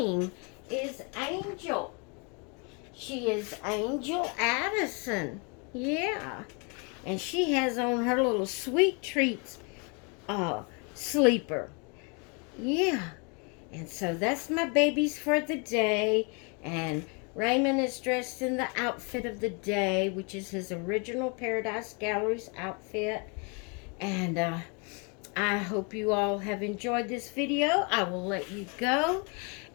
is Angel. She is Angel Addison. Yeah, and she has on her little Sweet Treats sleeper. Yeah. And so that's my babies for the day. And Raymond is dressed in the outfit of the day, which is his original Paradise Galleries outfit. And I hope you all have enjoyed this video. I will let you go,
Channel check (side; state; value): right; quieter; 33.9 dB